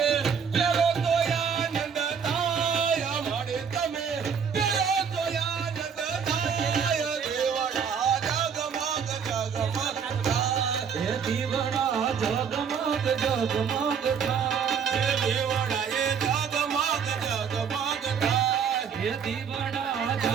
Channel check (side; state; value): left; quieter; 6.9 dB